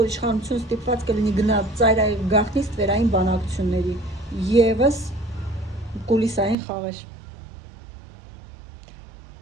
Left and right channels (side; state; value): left; drops out; at 6.6 s